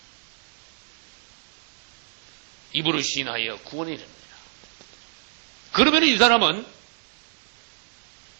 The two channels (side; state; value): left; silent; digital silence